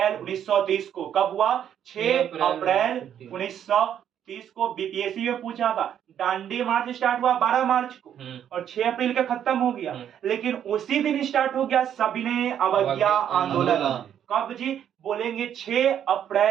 1930 को। कब हुआ, 6 अप्रैल 1930 को। बीपीएससी में पूछा था, दांडी मार्च स्टार्ट हुआ 12 मार्च को और 6 अप्रैल का खत्म हो गया, लेकिन उसी दिन स्टार्ट हो गया सविनय अवज्ञा आंदोलन। कब जी, बोलेंगे 6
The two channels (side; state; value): left; quieter; 9.6 dB